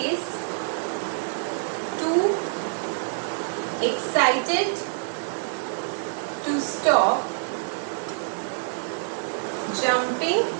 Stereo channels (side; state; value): left; silent; 61 dB below the other